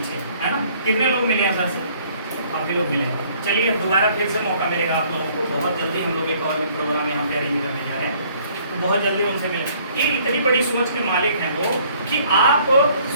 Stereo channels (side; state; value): both; inverted; correlation -0.60